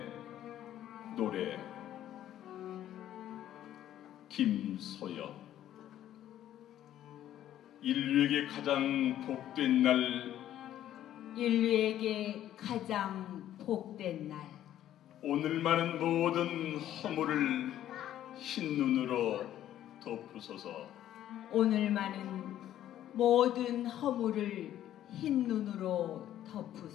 노래 김소엽. 인류에게 가장 복된 날, 인류에게 가장 복된 날, 오늘만은 모든 허물을 흰 눈으로 덮으소서. 오늘만은 모든 허물을 흰 눈으로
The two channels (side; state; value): right; quieter; 12.3 dB